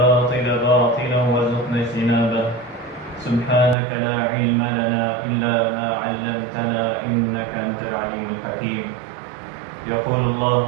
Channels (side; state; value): left; drops out; at 3.8 s